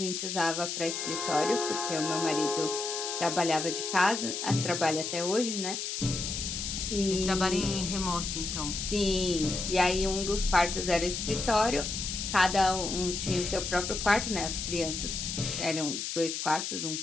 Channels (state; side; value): noise; left; hiss, 4 dB below the sound